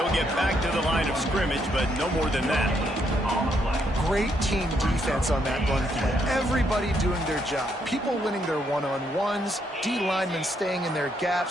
get back to the line of scrimmage, but no more than that. great team defense on that run play. Everybody doing their job. People winning their one-on-ones, D linemen staying in their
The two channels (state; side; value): normal; both; correlation 0.75